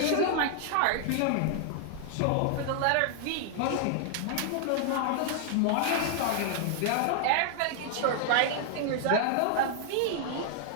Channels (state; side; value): different; both; correlation 0.00